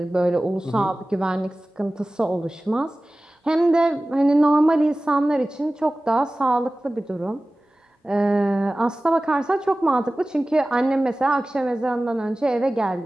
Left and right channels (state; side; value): normal; both; correlation 0.97